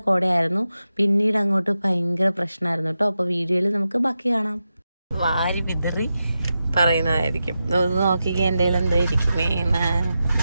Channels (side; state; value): both; inverted; correlation -0.90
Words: കോടയായിരുന്നു. പിന്നീട് അങ്ങോട്ട് ഭയങ്കര പ്രശ്നമായിരുന്നു കേട്ടോ. അപ്പോൾ വീഡിയോയിൽ നമുക്ക് ബാക്കി കാണാം. വാരി വിതറി പറയുന്നതായിരിക്കും. നോക്കിക്കുക എൻ്റെ കയ്യിൽ എന്തോ ഇരിക്കുന്നേന്ന്.